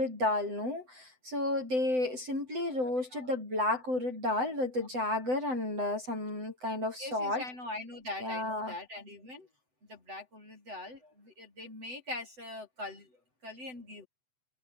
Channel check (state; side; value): late; left; 7.9 ms